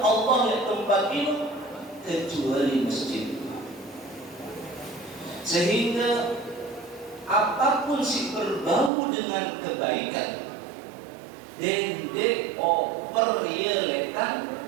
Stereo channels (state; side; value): drops out; left; at 8.9 s